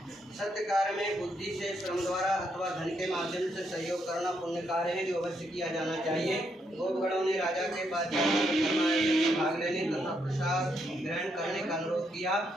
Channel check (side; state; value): both; normal; correlation 0.77